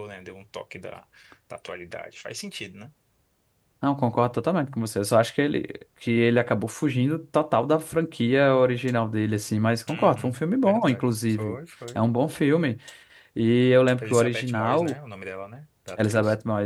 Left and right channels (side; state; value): both; identical; correlation 1.00